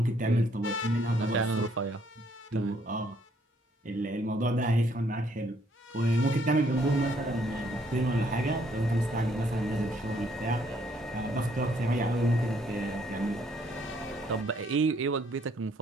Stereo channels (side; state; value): both; normal; correlation 0.67